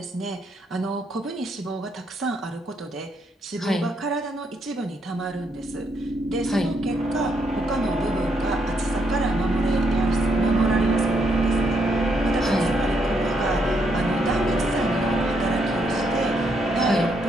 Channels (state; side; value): normal; both; correlation 0.75